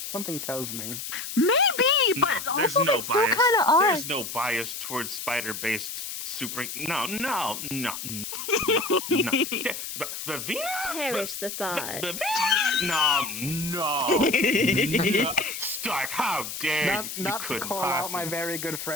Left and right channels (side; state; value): left; noise; hiss, 7 dB below the sound